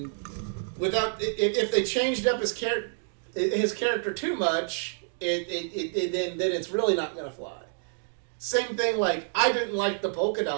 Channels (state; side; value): silent; left; digital silence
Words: without if they changed up his character too much, then it's really not going to fly. Same thing, like, I didn't like the polka